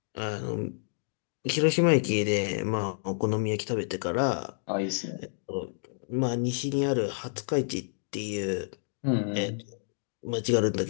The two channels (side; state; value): right; silent; digital silence